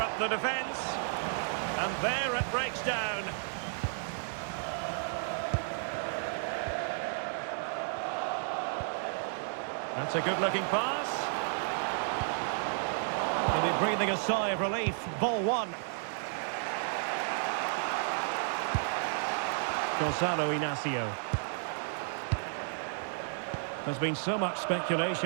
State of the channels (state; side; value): silent; left; digital silence